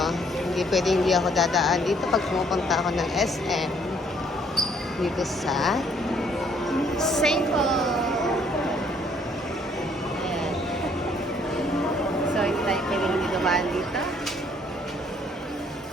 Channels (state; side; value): normal; both; correlation 0.63